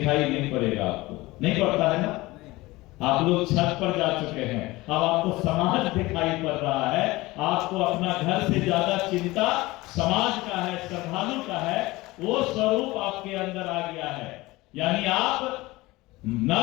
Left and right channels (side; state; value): right; quieter; 20.3 dB